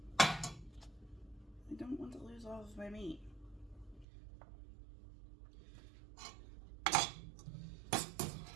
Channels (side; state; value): left; drops out; at 4.0 s